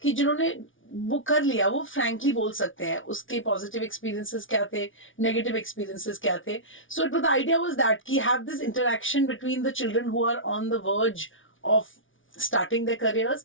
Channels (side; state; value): right; late; 0.57 ms